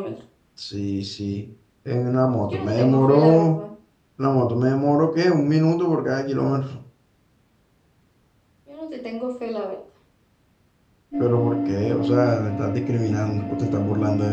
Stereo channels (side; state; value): both; identical; correlation 1.00